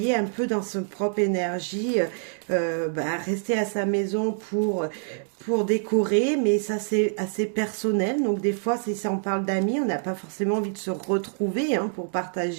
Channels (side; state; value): left; silent; 61 dB below the other